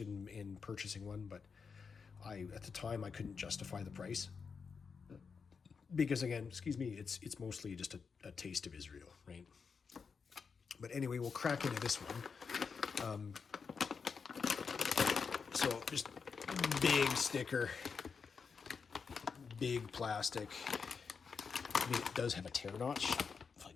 in purchasing one, but at the time I couldn't justify the price, because again, excuse me, it's mostly just a taste of Israel, right? But anyway, we'll crack into this one. So just big sticker, big plastic, I mean, it does have a tear notch, if I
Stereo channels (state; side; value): quieter; right; 5.6 dB